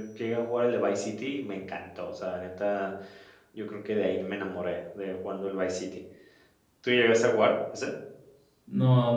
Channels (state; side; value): identical; both; correlation 1.00